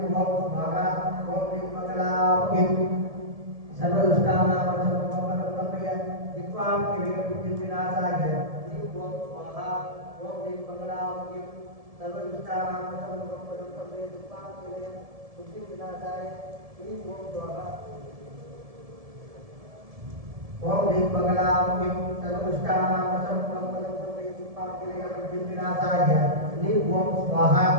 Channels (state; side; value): late; left; 1.7 ms